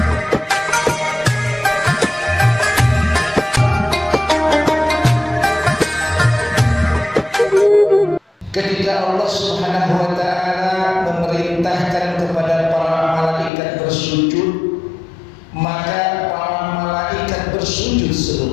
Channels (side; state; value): right; drops out; at 13.5 s